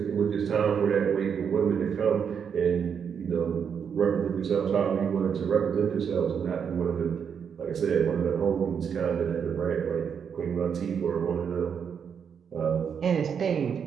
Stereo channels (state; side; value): quieter; left; 7.2 dB